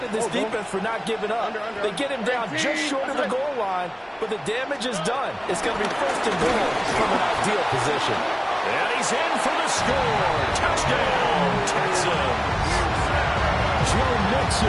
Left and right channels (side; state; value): both; identical; correlation 1.00